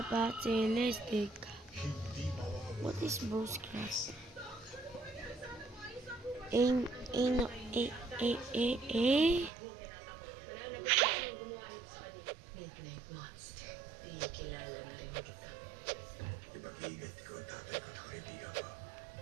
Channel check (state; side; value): drops out; left; at 9.5 s